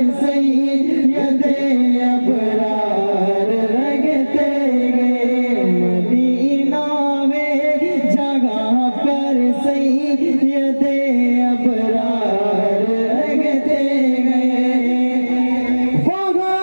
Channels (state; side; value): inverted; both; correlation -1.00